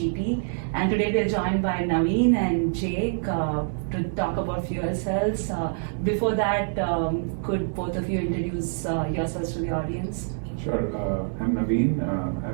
and today we are joined by Navin and Jake to talk about fuel cells. Before that, could both of you introduce yourselves to the audience? Sure. I'm Navin.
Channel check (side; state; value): left; silent; digital silence